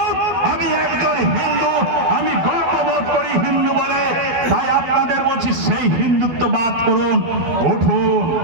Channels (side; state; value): left; late; 12 ms